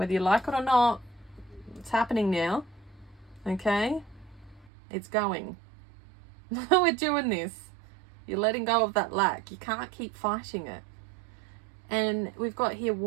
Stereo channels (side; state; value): left; drops out; at 4.7 s